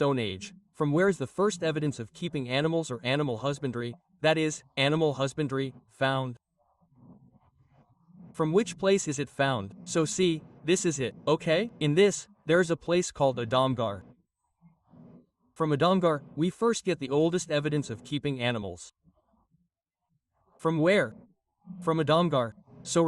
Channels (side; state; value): both; identical; correlation 1.00